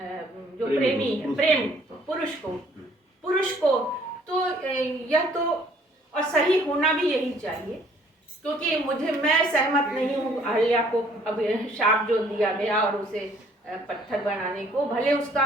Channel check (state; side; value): normal; both; correlation 0.60